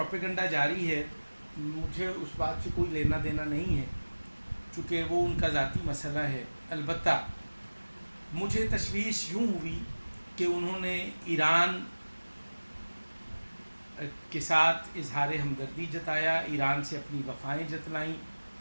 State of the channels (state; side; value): inverted; both; correlation -1.00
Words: جاری ہے، مجھے اس بات سے کوئی لینا دینا نہیں ہے، چونکہ وہ ان کا ذاتی مسئلہ ہے۔ البتہ مجھے تشویش یوں ہوئی کہ انہوں نے ایران کے ساتھ اظہار ہمدردی جتایا، ایران سے اپنی وفائیں جتلائیں